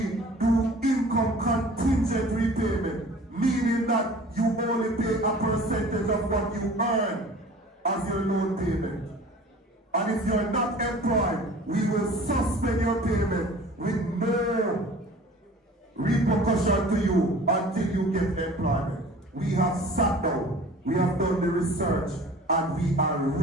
do income contingent repayment, meaning that you only pay a percentage of what you earn as your loan payment. And if you're not employed, we will suspend your payment with no repercussion to you until you get employment. We have sat down, we have done the research, and we are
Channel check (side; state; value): both; normal; correlation 0.45